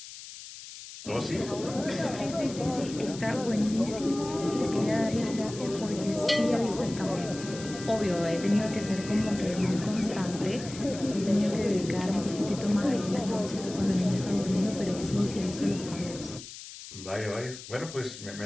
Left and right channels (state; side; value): noise; left; hiss, 13 dB below the sound